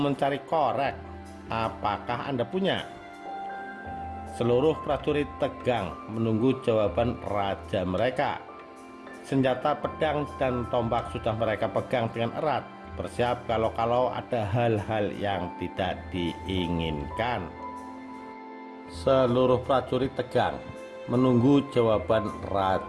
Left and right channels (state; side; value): identical; both; correlation 1.00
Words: korek. Apakah Anda punya? Seluruh prajurit tegang menunggu jawaban raja mereka. Senjata pedang dan tombak sudah mereka pegang dengan erat, bersiap kalau ada hal-hal yang tidak diinginkan. Seluruh prajurit tegang menunggu jawaban